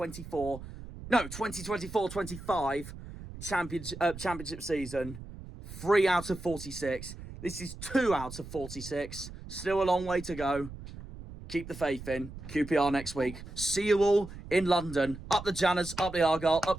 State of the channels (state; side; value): noise; right; rumble, 13 dB below the sound